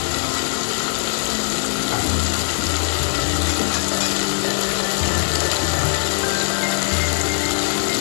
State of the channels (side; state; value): right; silent; digital silence